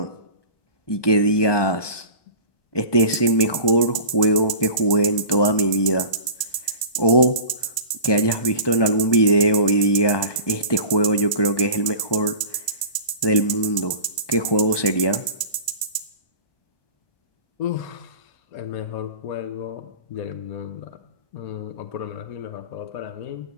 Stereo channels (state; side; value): late; right; 1.2 ms